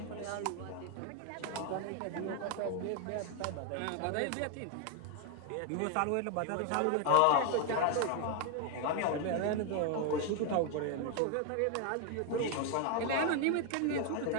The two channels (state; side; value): different; both; correlation 0.01